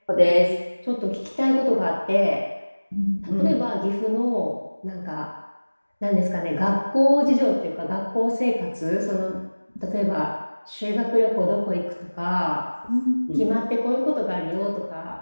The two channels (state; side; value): inverted; both; correlation -1.00